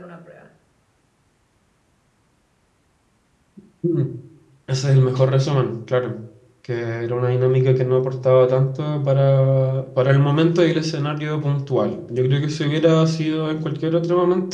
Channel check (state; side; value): identical; both; correlation 1.00